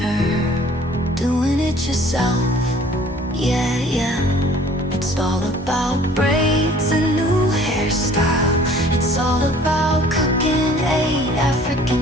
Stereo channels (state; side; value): normal; both; correlation 0.53